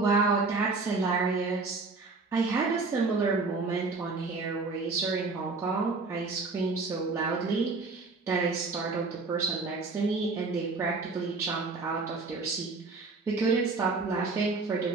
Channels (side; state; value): left; quieter; 4.0 dB